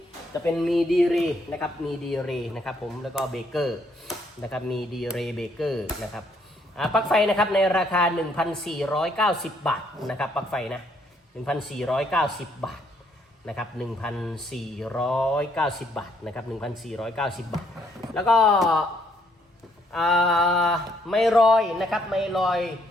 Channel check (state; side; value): normal; both; correlation 0.69